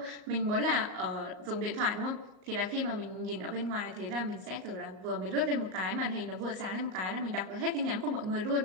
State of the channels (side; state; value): left; late; 38 ms